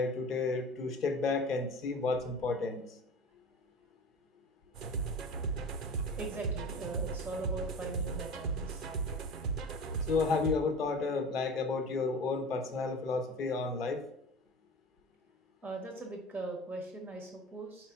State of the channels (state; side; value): normal; both; correlation 0.36